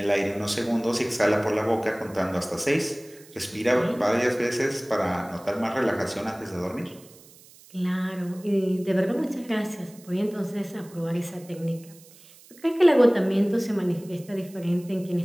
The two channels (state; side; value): noise; right; hiss, 24 dB below the sound